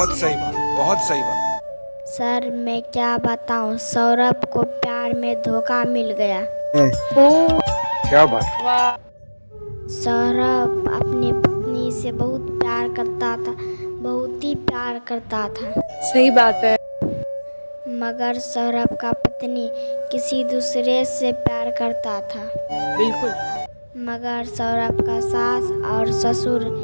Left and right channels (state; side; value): inverted; both; correlation -1.00